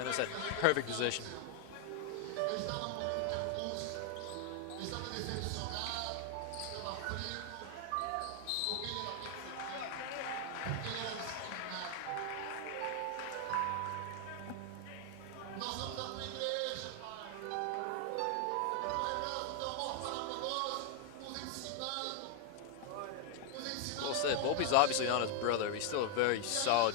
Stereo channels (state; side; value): different; both; correlation 0.00